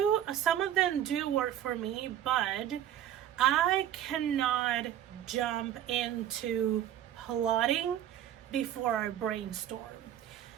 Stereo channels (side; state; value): left; quieter; 11.0 dB